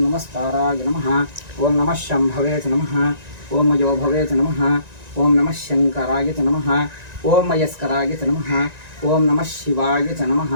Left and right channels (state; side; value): late; left; 1.9 ms